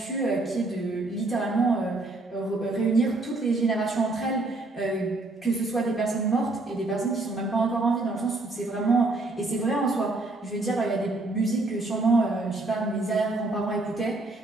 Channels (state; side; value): quieter; left; 3.0 dB